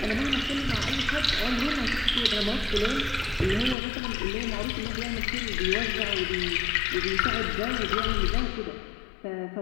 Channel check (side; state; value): right; drops out; at 3.8 s